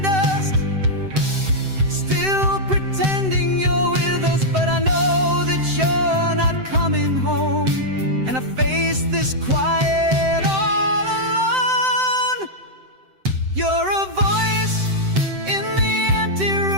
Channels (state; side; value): late; left; 7.8 ms